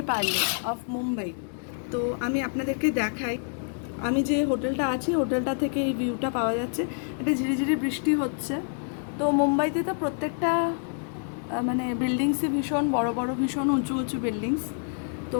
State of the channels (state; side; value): silent; right; 60 dB below the other